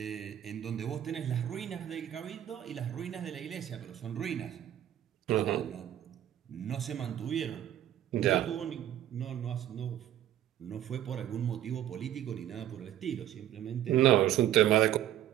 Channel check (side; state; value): left; quieter; 12.0 dB